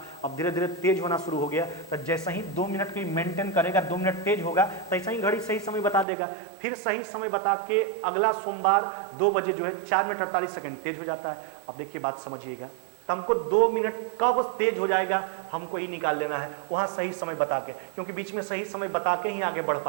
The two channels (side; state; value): left; drops out; at 6.1 s